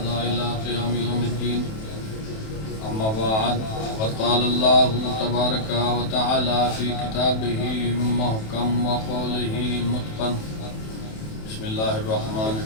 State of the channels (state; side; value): late; right; 27 ms